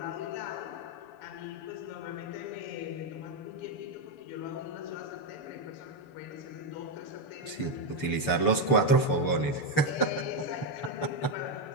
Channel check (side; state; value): right; late; 6.9 ms